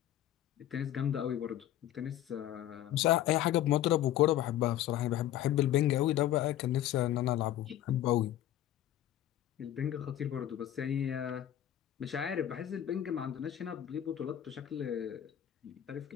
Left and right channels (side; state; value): right; quieter; 12.2 dB